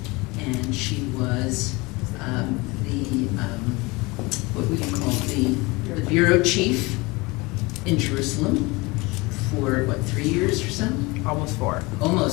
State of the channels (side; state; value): right; quieter; 24.4 dB